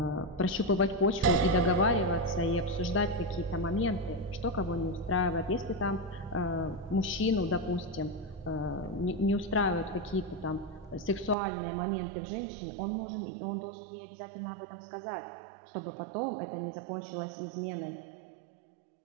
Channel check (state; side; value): drops out; left; at 11.4 s